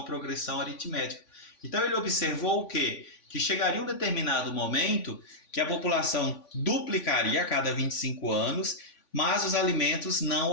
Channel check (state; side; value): late; right; 3.5 ms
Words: progressão aritmética. Então ele observou o quê? Que chegaria um determinado momento que a população duplicaria a cada 25 anos, mas os alimentos não